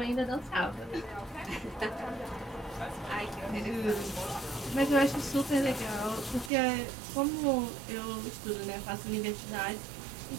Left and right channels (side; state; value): left; drops out; at 6.5 s